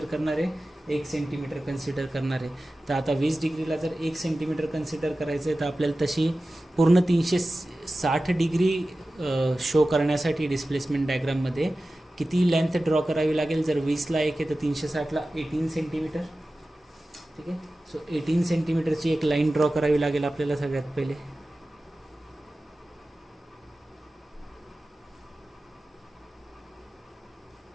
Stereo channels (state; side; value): normal; both; correlation 0.95